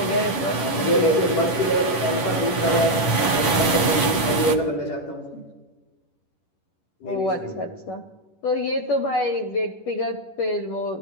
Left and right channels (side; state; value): right; late; 11 ms